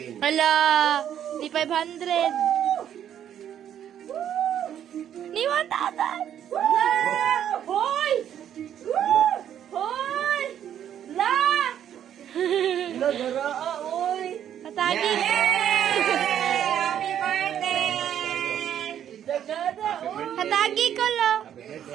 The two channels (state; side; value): quieter; left; 10.0 dB